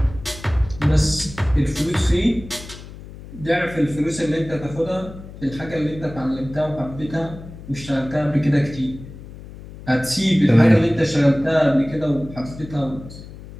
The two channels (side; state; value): left; noise; hum, 15 dB below the sound